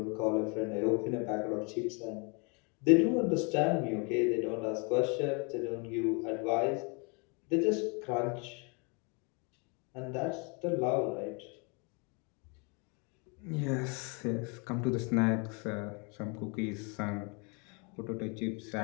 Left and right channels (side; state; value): right; quieter; 33.1 dB